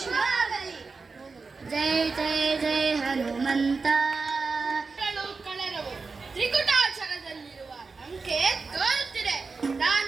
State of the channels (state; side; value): quieter; left; 4.4 dB